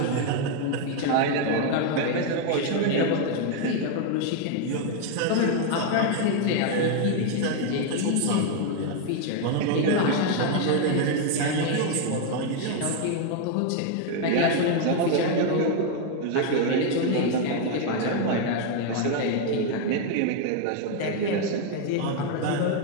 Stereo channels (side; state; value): both; different; correlation 0.01